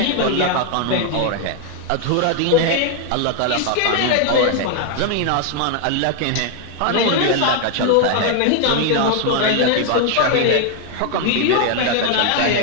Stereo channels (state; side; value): different; both; correlation 0.00